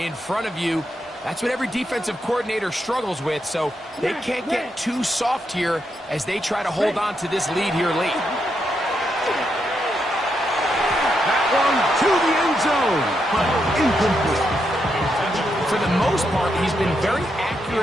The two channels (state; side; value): normal; both; correlation 0.82